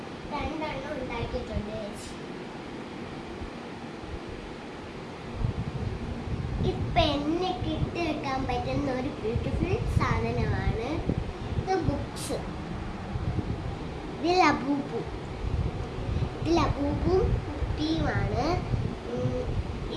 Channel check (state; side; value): identical; both; correlation 1.00